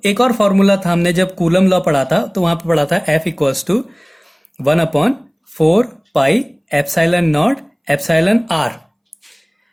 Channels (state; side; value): identical; both; correlation 1.00